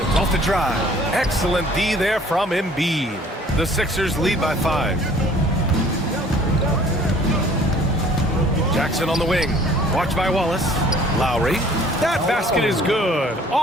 off the drive. Excellent D there from Embiid. The Sixers lead by 5. Jackson on the wing. Watched by Wallace. Lowry. That basket is good.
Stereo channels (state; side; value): normal; both; correlation 0.54